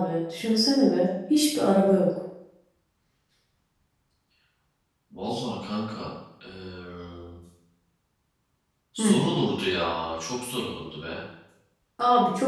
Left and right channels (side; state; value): both; identical; correlation 1.00